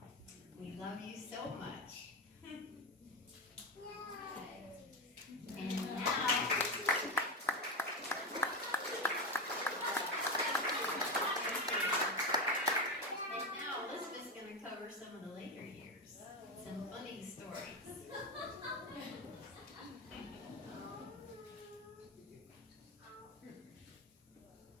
We love you so much. And now Elizabeth's going to cover some of the later years, some funny stories.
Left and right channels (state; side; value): normal; both; correlation 0.16